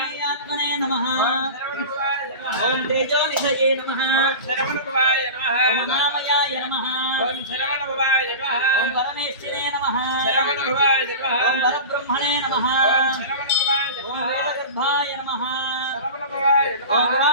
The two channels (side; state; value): both; inverted; correlation -0.31